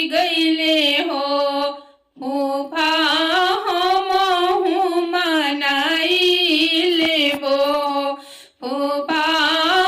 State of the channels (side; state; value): both; identical; correlation 1.00